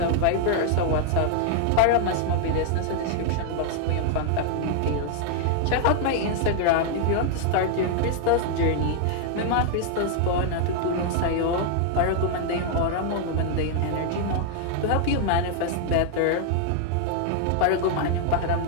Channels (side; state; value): both; different; correlation 0.00